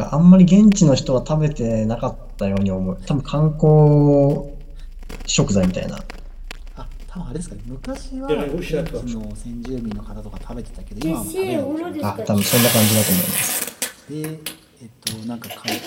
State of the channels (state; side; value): identical; both; correlation 1.00